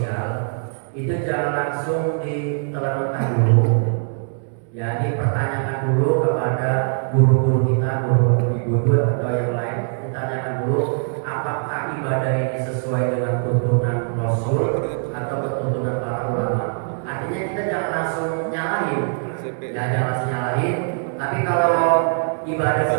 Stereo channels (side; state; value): left; silent; digital silence